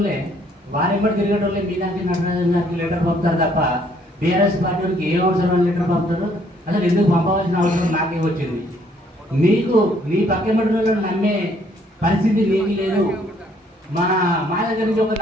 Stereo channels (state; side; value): normal; both; correlation 0.65